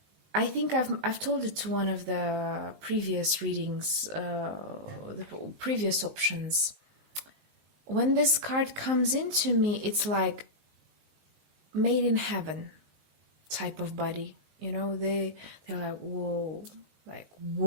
I think I've told it to one of the previous readings, the previous options. When this card comes into me, it's like made in heaven type of body. They're like,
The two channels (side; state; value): left; late; 19 ms